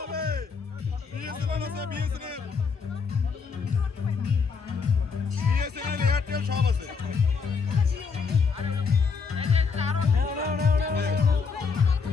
বিএসএনএল আছে বিএসএনএল এয়ারটেল সব আছে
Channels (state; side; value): quieter; right; 5.3 dB